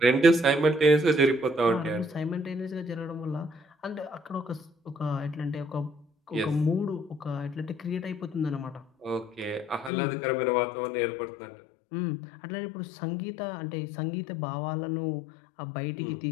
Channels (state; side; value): drops out; right; at 9.9 s